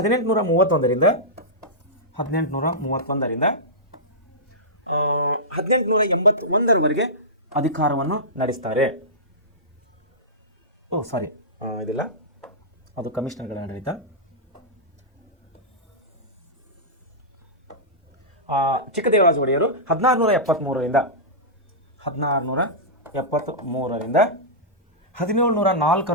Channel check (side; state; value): both; normal; correlation -0.14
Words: 1881ರವರೆಗೆ ಅಧಿಕಾರವನ್ನು ನಡೆಸ್ತಾರೆ. ಇದಿಲ್ಲ, ಅದು ಕಮಿಷನರ್ಗಳ ಆಡಳಿತ. ಚಿಕ್ಕದೇವರಾಜ ಒಡೆಯರು 1673ರಿಂದ